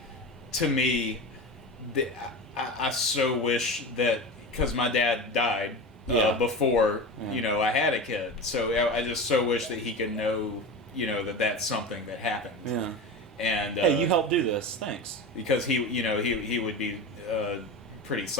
to me, I so wish that, because my dad died Yeah. before Yeah. you know I had a kid, so I just so wish that he could know, you know, that that's something that happened. Yeah. And Hey, you helped do this. Thanks. because he would be pretty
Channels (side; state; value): both; normal; correlation 0.27